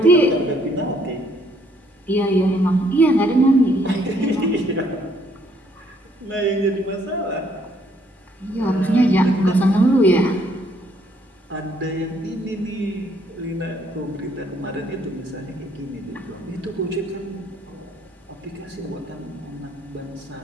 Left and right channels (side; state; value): both; normal; correlation 0.67